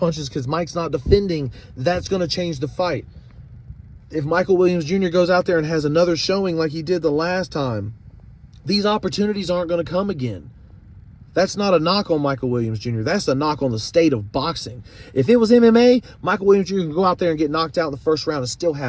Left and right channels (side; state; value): both; identical; correlation 1.00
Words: because Mike's not defending, that's going to change the fight. If Michael Williams Jr. goes out there and has another showing like he did the last time, these opportunities aren't going to come again. That's not a knock on Michael Williams Jr. That's a knock on the state of boxing. If it was MMA, Michael Williams Jr. can go out there and get knocked out in the first round and still